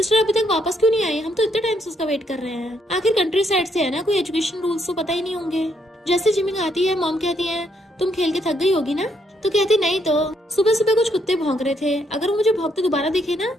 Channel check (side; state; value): both; normal; correlation 0.74